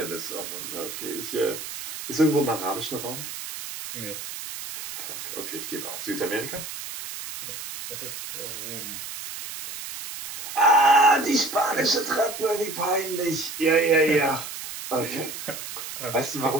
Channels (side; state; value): right; noise; hiss, 9 dB below the sound